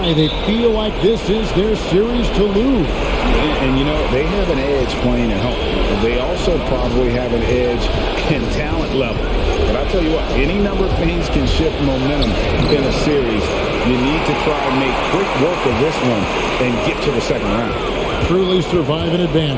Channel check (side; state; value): both; identical; correlation 1.00